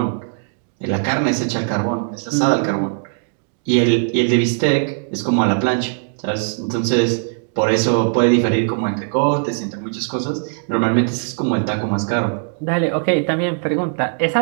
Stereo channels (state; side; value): silent; left; digital silence